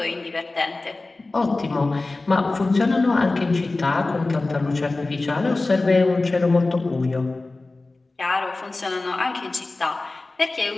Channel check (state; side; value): quieter; right; 3.2 dB